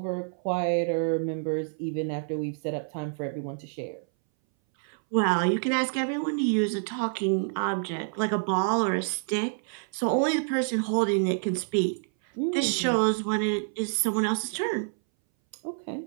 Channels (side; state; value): left; silent; 59 dB below the other